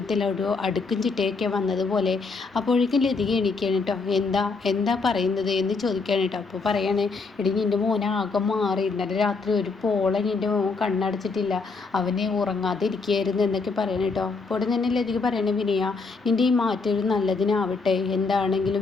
ഒരു അടുക്കും ചിട്ടയൊക്കെ വന്നതുപോലെ. അപ്പോഴേക്കും ലതിക എണീക്കുകയാണ് കേട്ടോ. എന്താ പറയുന്നത് എന്ന് ചോദിക്കുകയാണ് കേട്ടോ. അപ്പോൾ പറയാണ്, എടി നിൻ്റെ മോനെ ആകെ മാറി, ഇന്നലെ രാത്രി ഒരു പോള നിൻ്റെ മോൻ കണ്ണടച്ചിട്ടില്ല, അവനെ ഉറങ്ങാതെ ഇരിക്കുകയായിരുന്നു എന്നൊക്കെ പറയണം കേട്ടോ. അപ്പോൾ ഉടൻ തന്നെ ലതിക പറയണേ, വിനയ നിൻ്റെ ഈ മാറ്റം ഒരു നല്ലതിനാവട്ടെ, എന്താണെങ്കിലും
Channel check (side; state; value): right; quieter; 4.3 dB